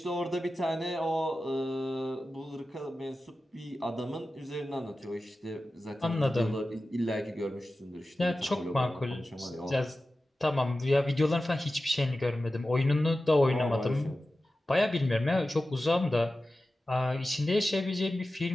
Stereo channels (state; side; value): normal; both; correlation 0.94